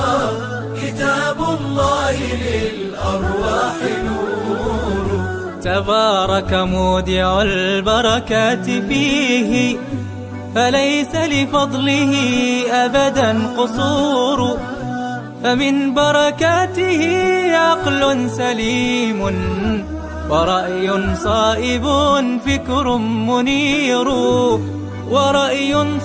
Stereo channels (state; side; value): identical; both; correlation 1.00